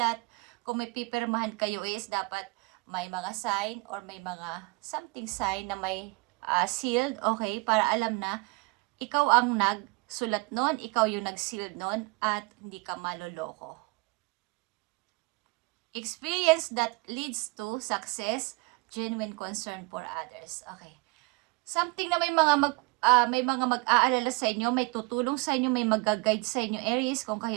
Kung may pipirmahan kayo is dapat may mga sign or may mga something sign na may sealed, okay? Para alam na ikaw ang nagsulat nun, ikaw yung nag-sealed nun at hindi ka maloloko. Experience that leads to success, genuine concern for others. Okay. Something na may mga mag-aalala sa inyo, may tutulong sa inyo, may mag-guide sa inyo, Aries, kung kayo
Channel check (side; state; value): left; quieter; 28.2 dB